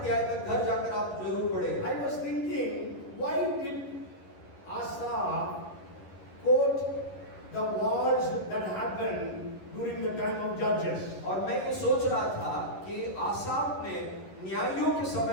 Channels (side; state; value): right; late; 11 ms